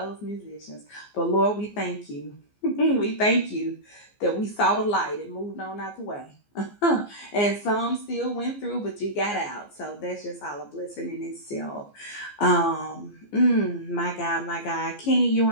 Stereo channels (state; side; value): late; right; 15 ms